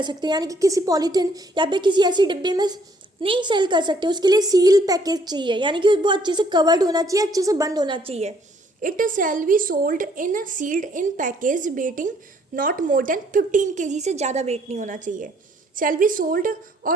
सकते, यानी कि किसी पॉलीथिन या फिर किसी ऐसी डिब्बे में नहीं सेल कर सकते। उसके लिए सील पैकेज चाहिए, यानी कि वो अच्छे से कवर्ड होना चाहिए, अच्छे से बंद होना चाहिए। It shall be sold in sealed in package weighting not more than 15 kg, से ज़्यादा वेट नहीं होना चाहिए। शैल बी सोल्ड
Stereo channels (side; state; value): both; normal; correlation 0.65